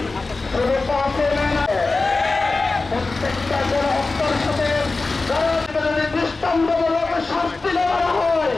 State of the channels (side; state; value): right; quieter; 3.6 dB